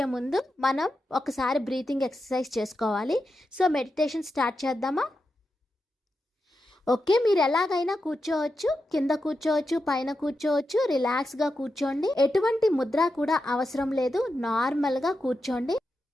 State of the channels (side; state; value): both; normal; correlation 0.88